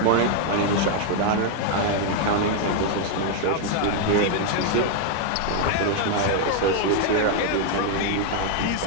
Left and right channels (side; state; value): both; different; correlation 0.00